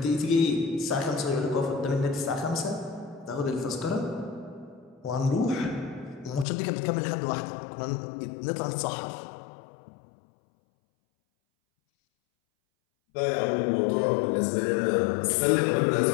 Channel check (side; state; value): right; drops out; at 6.5 s